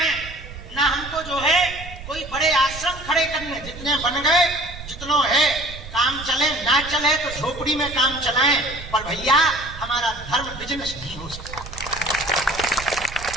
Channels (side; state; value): right; noise; rumble, 13 dB below the sound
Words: ना हमको जो है कोई बड़े आश्रम खड़े करने। जितने बन गए, जितनों है, काम चले ना चले तो झोपड़ी में काम चलाएं, पर भैया हमारा धर्म बिजनेस नहीं हो सकता।